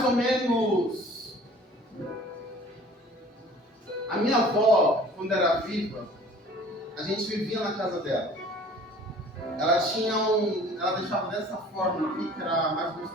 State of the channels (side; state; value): both; normal; correlation 0.49